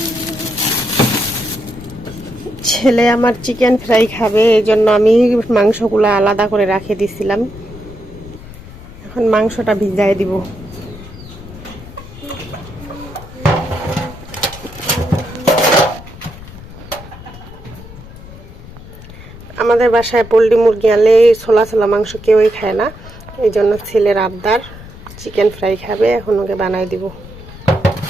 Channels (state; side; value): noise; left; rumble, 16 dB below the sound